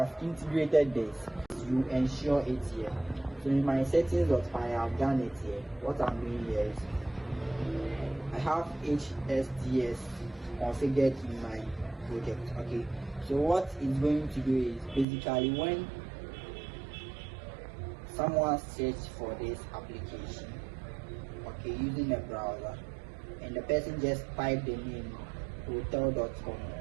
integrated this, you ensure it here. So in my settings.py, I have done it here. What I'm doing here is I have HSTS configured in my project. Okay, so what it's going to do is basically when someone searches for this application, okay, using a browser, and the person just type the name hotel.com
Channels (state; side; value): drops out; left; at 15.1 s